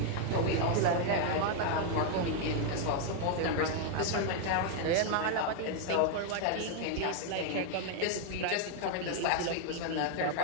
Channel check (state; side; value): different; both; correlation 0.01